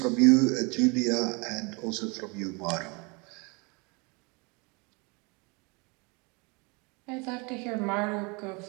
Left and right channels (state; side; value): quieter; left; 29.9 dB